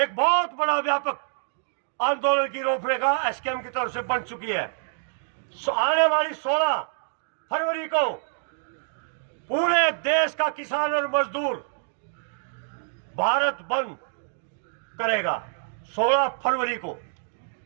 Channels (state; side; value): silent; left; digital silence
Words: बहुत बड़ा व्यापक आंदोलन की रूपरेखा एसकेएम की तरफ से बन चुकी है। आने वाली 16 फरवरी को पूरे देश का किसान और मजदूर भारत बंद करेगा। 16 फरवरी को